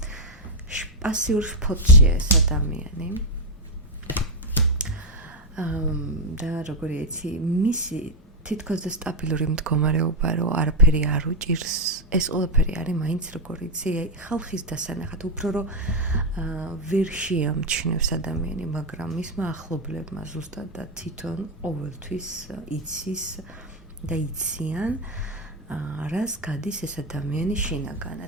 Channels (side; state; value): both; normal; correlation 0.03